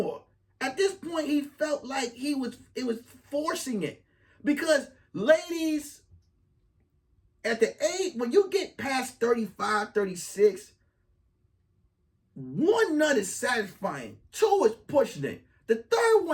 At this point, he felt like it was forcing it. Because ladies, at the age, when you get past 35, 36, 1 nut is satisfying. 2 is pushing it. The 3rd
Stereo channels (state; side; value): identical; both; correlation 1.00